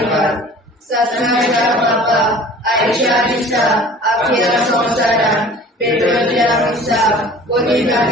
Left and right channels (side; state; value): both; normal; correlation 0.45